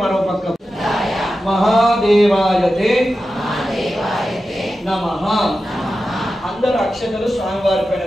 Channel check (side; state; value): both; normal; correlation 0.92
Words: మరో పక్క మహాదేవాయతే నమః. అందరు అక్షతలు స్వామివారి పైన